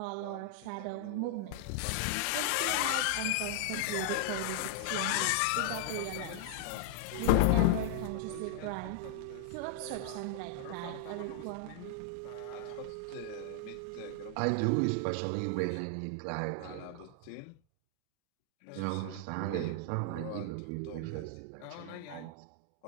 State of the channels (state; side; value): different; both; correlation -0.01